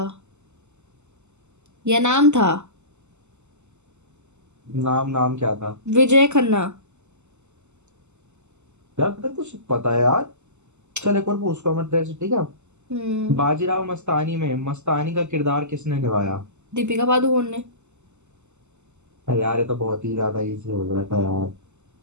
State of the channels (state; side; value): late; left; 0.83 ms